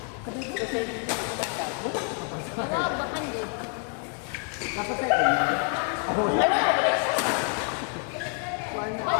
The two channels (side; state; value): right; quieter; 38.8 dB